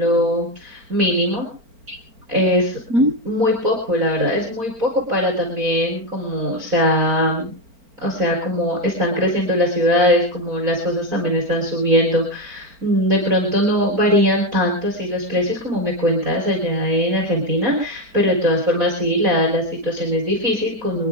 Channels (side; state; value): left; late; 4.4 ms